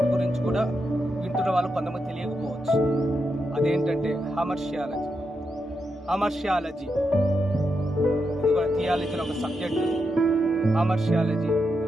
గురించి కూడా వింటున్న వాళ్ళు కొంతమంది తెలియకపోవచ్చు. అదేంటంటే హమర్షియాలజీ. ఇది కూడా థియాలజీలో ఒక సబ్జెక్టు, హమర్షియాలజీ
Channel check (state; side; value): normal; both; correlation 0.85